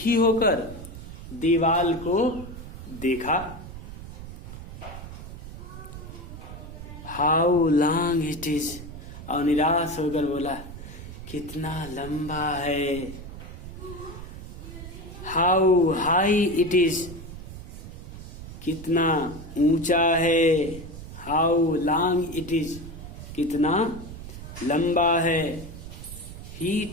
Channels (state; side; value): noise; right; rumble, 12 dB below the sound